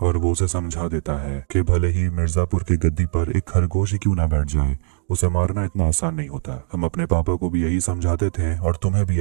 और वो उसे समझा देता है कि भले ही मिर्जापुर की गद्दी पर एक खरगोश ही क्यों ना बैठ जाए, उसे मारना इतना आसान नहीं होता। हम अपने पापा को भी यही समझाते थे और तुम्हें भी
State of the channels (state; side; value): silent; left; digital silence